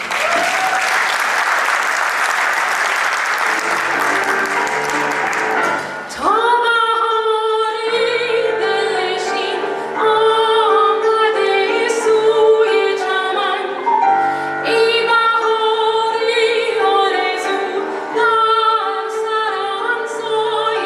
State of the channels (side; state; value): both; identical; correlation 1.00